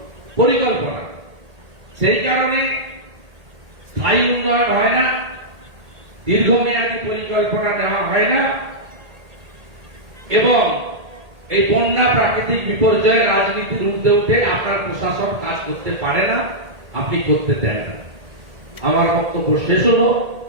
পরিকল্পনা। সেই কারণে স্থায়ী উন্নয়ন হয় না, দীর্ঘমেয়াদী পরিকল্পনা নেওয়া হয় না, এবং এই বন্যা প্রাকৃতিক বিপর্যয়ের রাজনীতির ঊর্ধ্বে উঠে আপনার প্রশাসন কাজ করতে পারে না, আপনি করতে দেন না। আমার বক্তব্য শেষ হলো।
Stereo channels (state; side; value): late; left; 1.8 ms